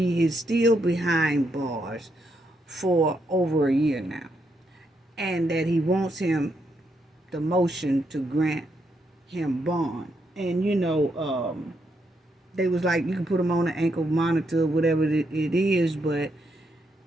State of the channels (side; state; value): both; normal; correlation 0.79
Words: is still behind bars for over a year now, and that he wants him the motion to grant him bond. And they was like, you can put him on an ankle monitor, whatever it is, but